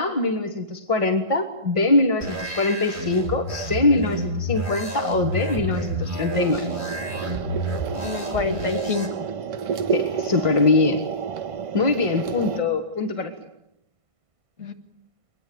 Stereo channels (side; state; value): left; late; 1.5 ms